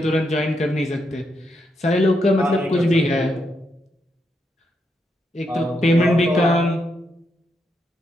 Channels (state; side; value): normal; both; correlation 0.81